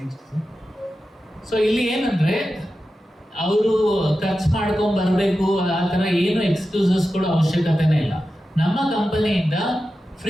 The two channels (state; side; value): normal; both; correlation 0.92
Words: ಸೊ ಇಲ್ಲಿ ಏನಂದ್ರೆ ಅವರು ಖರ್ಚು ಮಾಡ್ಕೊಂಡ್ ಬರ್ಬೇಕು ಆ ತರ ಏನು ಎಕ್ಸ್ಕ್ಯೂಸಸ್ ಕೊಡೋ ಅವಶ್ಯಕತೆನೇ ಇಲ್ಲ. ನಮ್ಮ ಕಂಪನಿಯಿಂದ